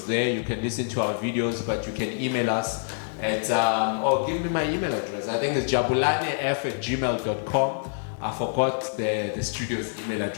there. You can listen to our videos, but you can email us at give me my email address. I think it's jabulanef@gmail.com. I forgot the studio's email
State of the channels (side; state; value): right; silent; digital silence